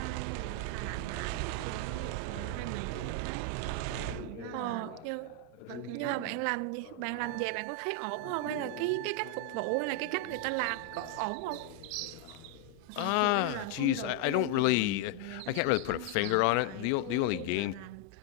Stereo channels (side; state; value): both; different; correlation 0.01